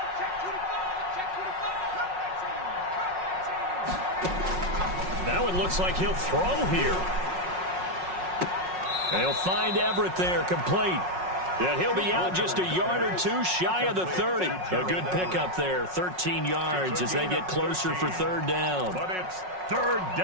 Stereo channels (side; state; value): left; late; 5.4 ms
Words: Now it looks like he'll throw here. And he'll find Everett there, complete. And he'll be out just a yard or two shy of the 30. A good pickup there, 13 yards as they get closer for third down. But it's third